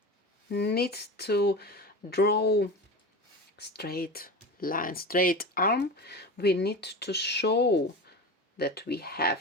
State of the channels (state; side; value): normal; both; correlation 0.28